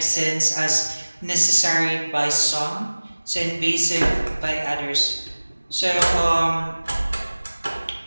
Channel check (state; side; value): inverted; both; correlation -1.00